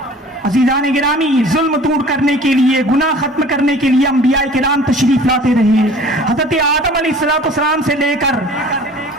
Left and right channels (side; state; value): both; normal; correlation 0.46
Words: عزیزان گرامی, ظلم دور کرنے کے لیے, گناہ ختم کرنے کے لیے انبیاء کرام تشریف لاتے رہے. حضرت آدم علیہ السلام سے لے کر